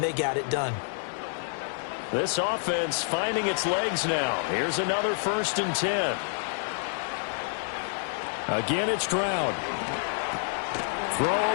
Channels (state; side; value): silent; right; digital silence